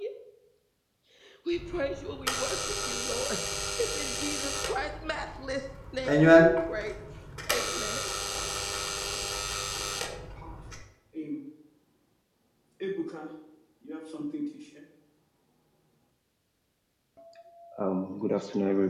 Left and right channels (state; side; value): identical; both; correlation 1.00